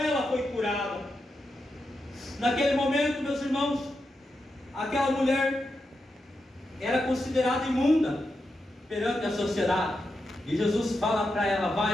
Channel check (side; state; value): both; normal; correlation 0.87